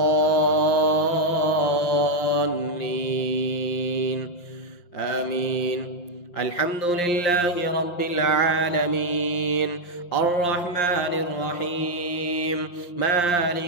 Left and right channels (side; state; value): right; late; 5.7 ms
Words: آمين. الحمد لله رب العالمين، الرحمن الرحيم،